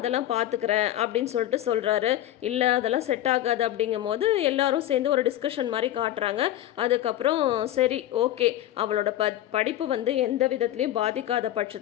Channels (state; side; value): quieter; right; 13.0 dB